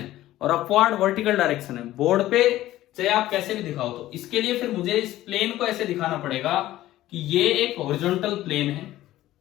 और अपवर्ड वर्टिकल डायरेक्शन है। बोर्ड पे चाहे आप कैसे भी दिखाओ, तो इसके लिए फिर मुझे इस प्लेन को ऐसे दिखाना पड़ेगा कि ये एक हॉरिजॉन्टल प्लेन है,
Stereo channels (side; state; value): right; quieter; 15.0 dB